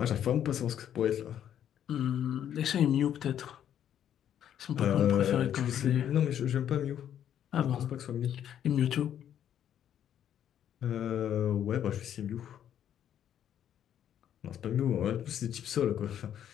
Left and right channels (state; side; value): quieter; right; 10.1 dB